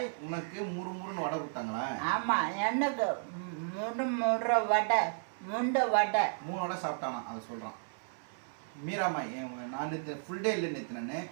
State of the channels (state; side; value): silent; left; digital silence